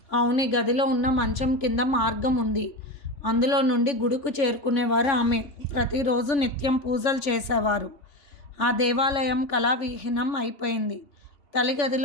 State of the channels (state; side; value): late; right; 3.5 ms